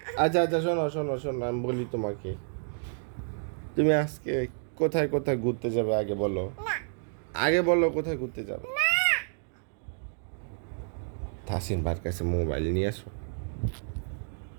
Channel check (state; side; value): silent; left; 58 dB below the other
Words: আচ্ছা আচ্ছা, শোনো শোনো শোনো, আমি বলি তোমাকে, তুমি আজকে কোথায় কোথায় ঘুরতে যাবে আগে বলো। আগে বলো কোথায় ঘুরতে যাবে। তাসিন বার কাছে মোবাইল নিয়ে আসো।